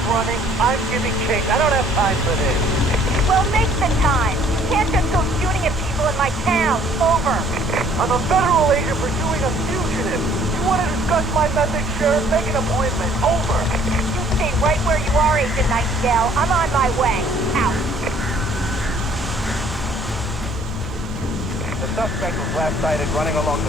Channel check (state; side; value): normal; both; correlation 0.59